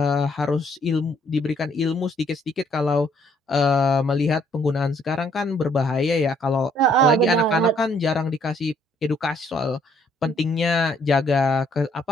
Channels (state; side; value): normal; both; correlation 0.66